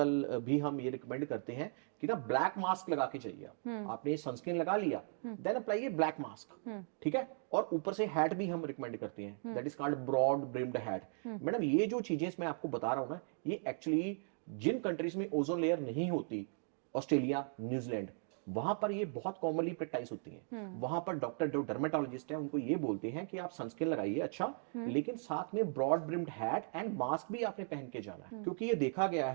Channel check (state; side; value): silent; left; 53 dB below the other